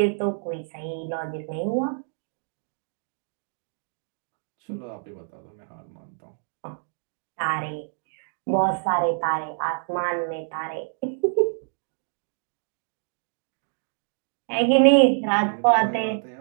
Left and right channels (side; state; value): left; silent; digital silence